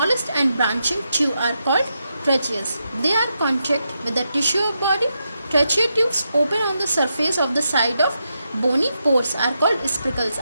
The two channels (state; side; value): inverted; both; correlation -0.84